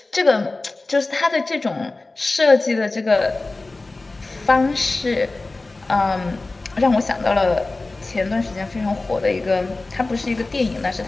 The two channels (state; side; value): quieter; right; 3.3 dB